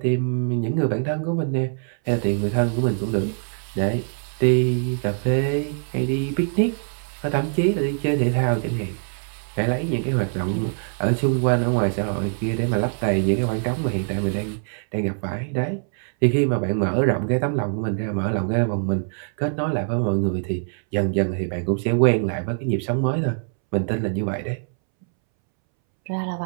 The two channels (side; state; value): left; silent; 63 dB below the other